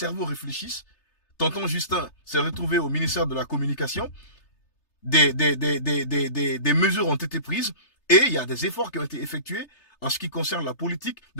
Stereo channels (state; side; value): late; right; 3.3 ms